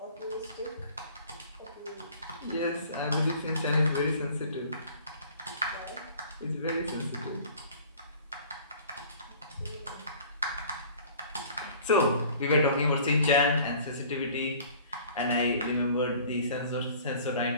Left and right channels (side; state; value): both; inverted; correlation -0.48